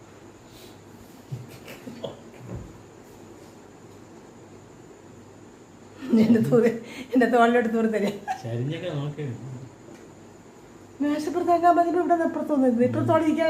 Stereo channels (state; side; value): identical; both; correlation 1.00